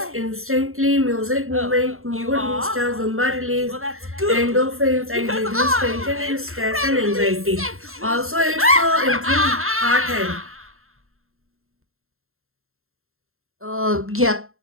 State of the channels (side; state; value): left; late; 0.62 ms